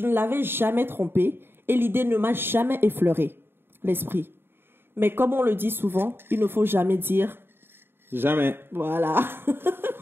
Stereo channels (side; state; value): left; late; 0.11 ms